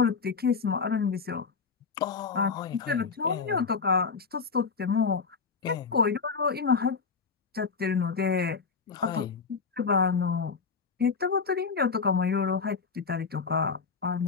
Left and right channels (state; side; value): quieter; right; 5.2 dB